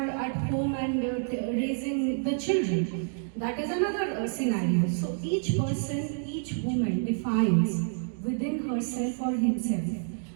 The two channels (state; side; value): silent; left; digital silence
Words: at home and raising the children. That is another scenario. So each person, each woman defines within herself or himself,